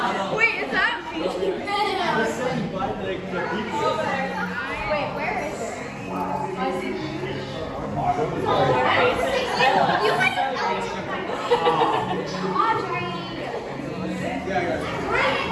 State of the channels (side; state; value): both; identical; correlation 1.00